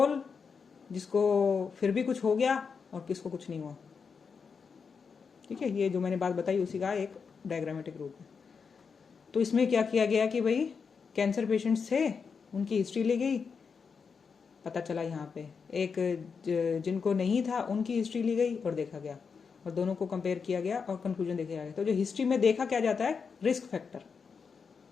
जिसको फिर भी कुछ हो गया और किसको कुछ नहीं हुआ। ठीक है, ये जो मैंने बात बताई उसी का एक डायग्रामेटिक रूप है। तो इसमें क्या किया गया कि भाई कैंसर पेशेंट्स थे, उनकी हिस्ट्री ली गई, पता चला यहाँ पे एक जिनको नहीं था उनकी हिस्ट्री ली गई और देखा गया, और दोनों को कंपेयर किया गया और कंक्लूजन देखा गया। तो जो हिस्ट्री में देखा क्या जाता है, रिस्क फैक्टर।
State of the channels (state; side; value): quieter; right; 5.7 dB